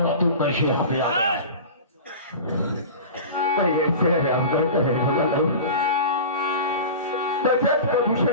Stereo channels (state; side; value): inverted; both; correlation -0.33